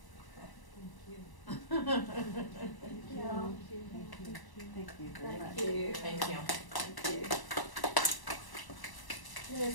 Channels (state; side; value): late; right; 1.0 ms